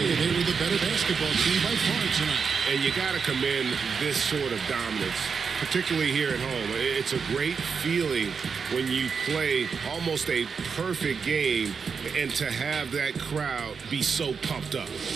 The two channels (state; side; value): quieter; left; 5.8 dB